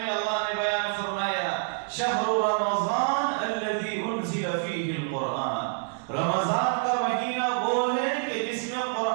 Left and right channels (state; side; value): silent; left; digital silence